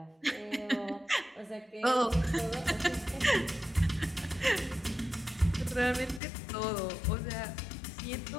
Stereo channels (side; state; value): right; drops out; at 6.2 s